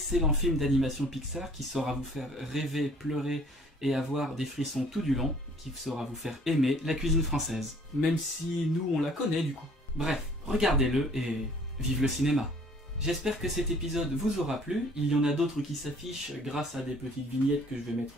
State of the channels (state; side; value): normal; both; correlation 0.55